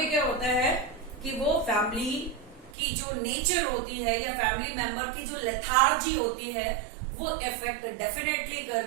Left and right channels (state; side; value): drops out; left; at 2.7 s